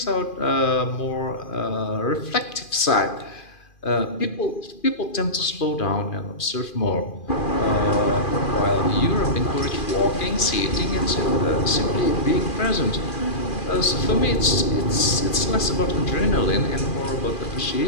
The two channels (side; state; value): right; late; 2.4 ms